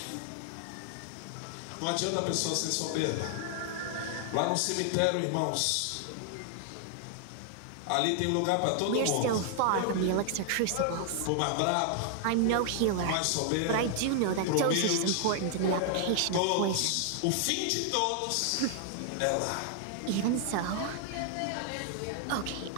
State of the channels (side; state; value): both; different; correlation 0.00